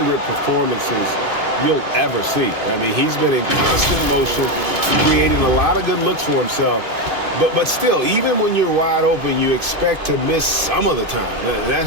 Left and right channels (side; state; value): left; late; 2.5 ms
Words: performances you'll ever see. I mean, he's been in constant motion, creating a lot of good looks for himself. But still, even when you're wide open, you expect to miss some of the time. That